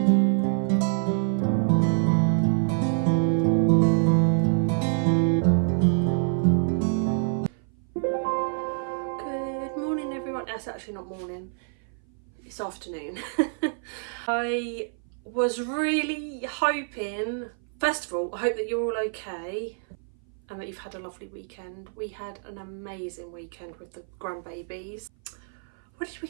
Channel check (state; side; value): silent; left; 57 dB below the other